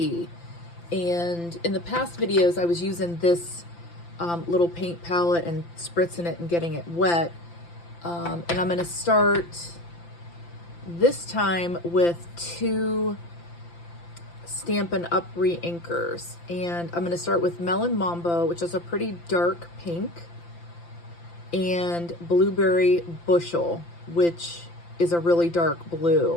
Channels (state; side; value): late; right; 5.8 ms